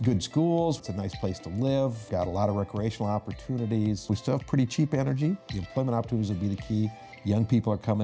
good schools, it's a nice place to live, got a lot of recreational opportunities. We still have pretty cheap energy. The employment opportunities will be the key. Young people are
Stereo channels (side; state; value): both; identical; correlation 1.00